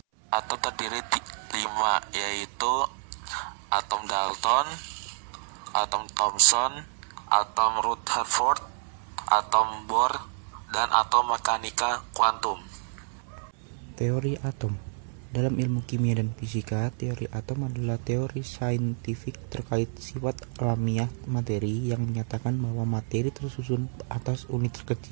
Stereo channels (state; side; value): silent; left; 59 dB below the other